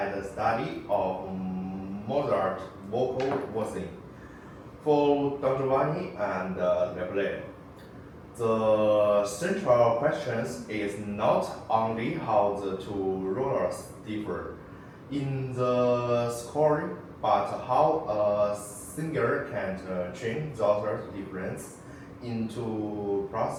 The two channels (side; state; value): both; identical; correlation 1.00